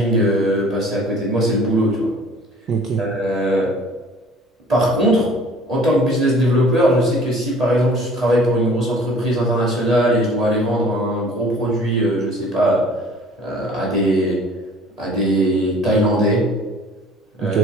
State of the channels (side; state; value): both; normal; correlation 0.51